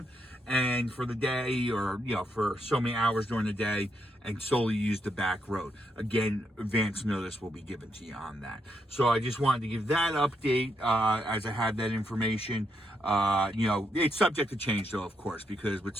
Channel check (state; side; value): normal; both; correlation 0.79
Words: and for the day, or for so many hours during the day, and solely use the back road. Again, advance notice will be given to you on that. So I just wanted to give that update as I have that information. It's subject to change though, of course, because with